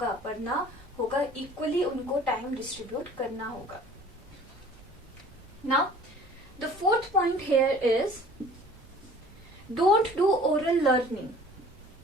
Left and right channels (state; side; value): normal; both; correlation 0.49